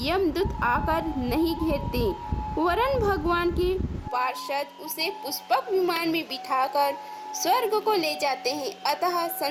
यमदूत आकर नहीं घेरते, वरन भगवान के पार्षद उसे पुष्पक विमान में बिठाकर स्वर्ग को ले जाते हैं। अतः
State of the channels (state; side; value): identical; both; correlation 1.00